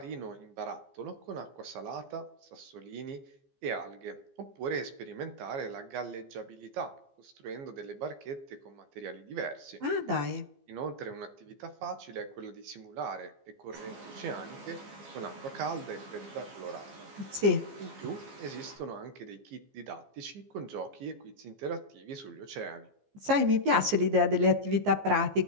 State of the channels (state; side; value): late; left; 15 ms